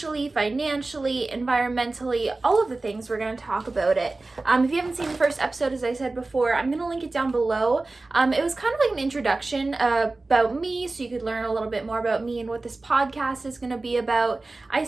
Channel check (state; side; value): quieter; left; 3.3 dB